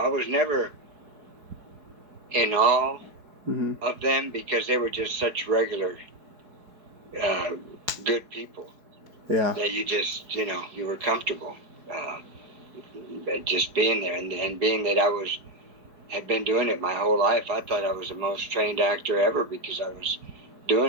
was never in awe of them because they were just such regular, good people. Yeah. That you just, you were comfortable just being there. And being that I had been doing it my whole life, I thought I was the most trained actor ever because I was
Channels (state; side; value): late; left; 4.7 ms